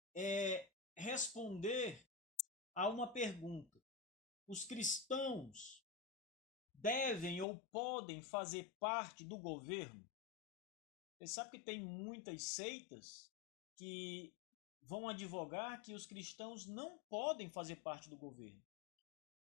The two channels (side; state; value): right; drops out; at 7.5 s